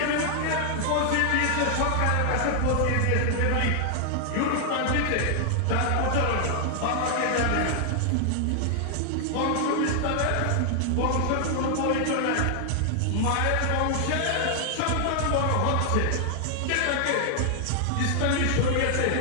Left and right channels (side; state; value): both; different; correlation 0.00